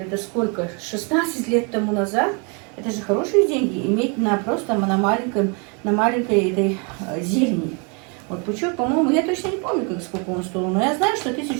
сколько, 16 лет тому назад, это же хорошие деньги, иметь просто на маленьком на маленькой этой зелени. Вот пучок, по-моему, я точно не помню, сколько он стоил, но я знаю, что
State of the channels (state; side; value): quieter; left; 34.8 dB